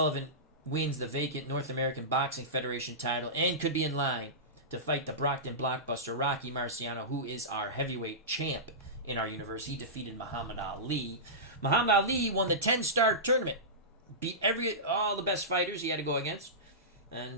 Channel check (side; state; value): both; normal; correlation -0.17